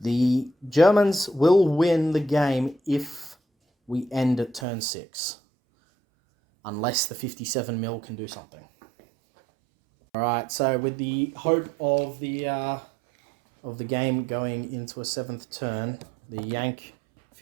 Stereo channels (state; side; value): drops out; left; at 4.7 s